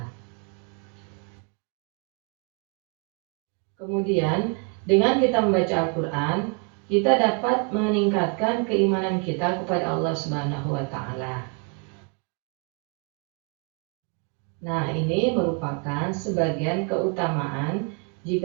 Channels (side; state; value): left; quieter; 34.2 dB